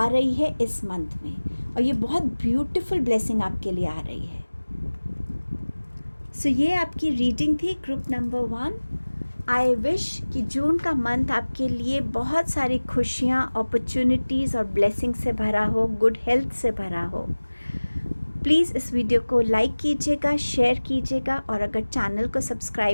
रही है इस मंथ में, और ये बहुत ब्यूटीफुल ब्लेसिंग आपके लिए आ रही है। सो ये आपकी रीडिंग थी ग्रुप नंबर 1। आई विश कि जून का मंथ आपके लिए बहुत सारी खुशियाँ, अपॉर्चुनिटीज़ और ब्लेसिंग से भरा हो, गुड हेल्थ से भरा हो। प्लीज़ इस वीडियो को लाइक कीजिएगा, शेयर कीजिएगा, और अगर चैनल को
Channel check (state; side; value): inverted; both; correlation -1.00